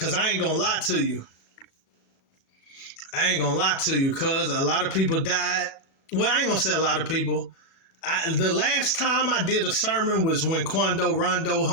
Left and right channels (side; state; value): right; late; 36 ms